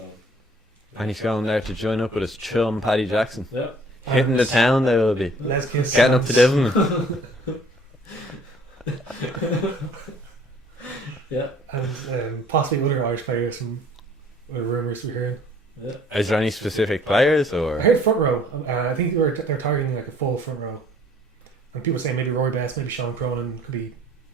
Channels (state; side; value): normal; both; correlation 0.56